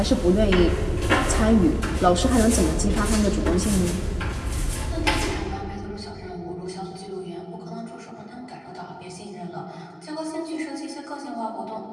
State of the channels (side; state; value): both; identical; correlation 1.00